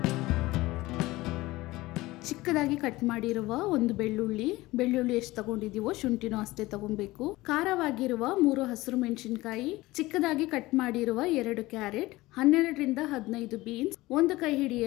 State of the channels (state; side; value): quieter; right; 19.2 dB